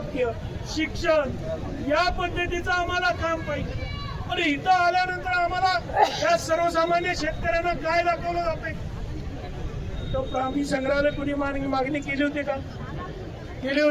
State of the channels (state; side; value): identical; both; correlation 1.00